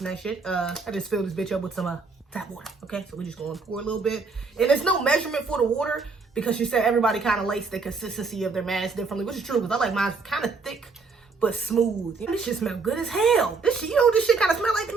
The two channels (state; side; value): quieter; left; 4.5 dB